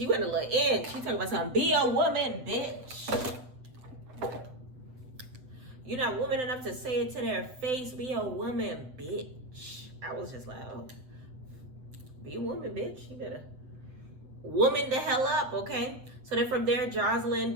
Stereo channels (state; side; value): late; left; 7.8 ms